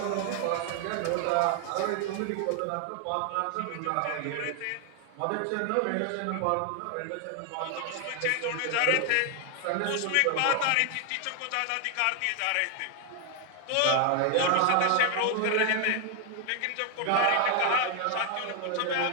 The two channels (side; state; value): both; different; correlation 0.00